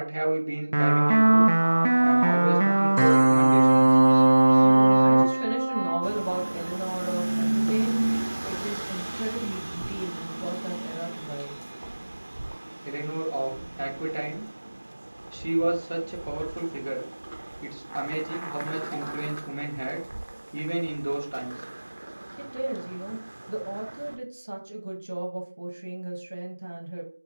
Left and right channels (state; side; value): inverted; both; correlation -1.00